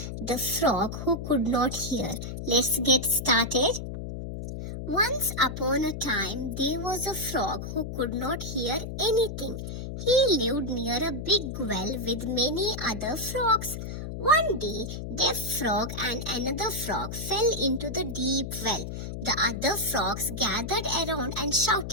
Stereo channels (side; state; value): left; noise; hum, 7 dB below the sound